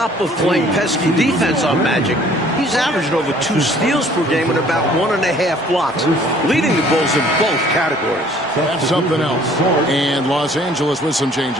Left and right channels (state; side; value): normal; both; correlation 0.56